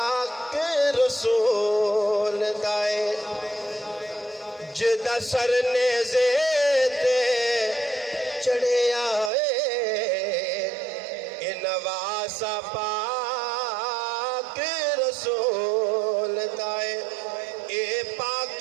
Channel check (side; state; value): left; drops out; at 9.3 s